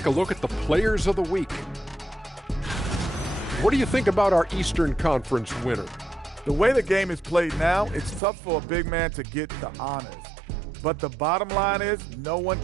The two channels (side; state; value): left; drops out; at 8.2 s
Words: a look at the players of the week. What do you think about our Eastern Conference winner? The way the game is played now, it's tough for a big man to get the honors. But the bottom line is no one